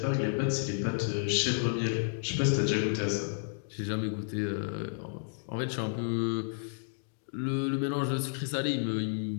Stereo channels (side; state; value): right; silent; digital silence